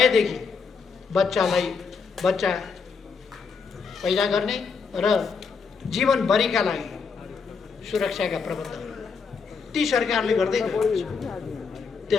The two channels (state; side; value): quieter; right; 5.4 dB